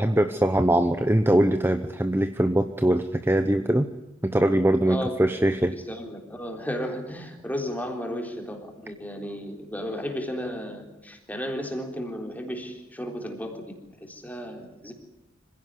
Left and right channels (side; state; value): both; normal; correlation 0.89